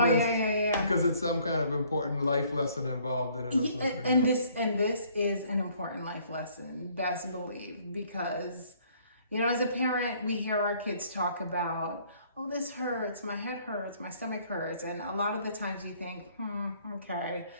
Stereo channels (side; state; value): both; inverted; correlation -0.61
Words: to miss. Yeah. Because it's some kind of important life lesson involved in it. Or something, and this is an important life lesson, best believe, because as a parent, we hear our kids talk about, oh, this hurts, my head hurts, my stomach hurts, and a lot of the times you think, okay.